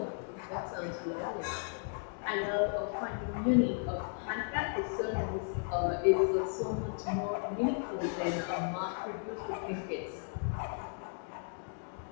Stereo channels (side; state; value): right; silent; 54 dB below the other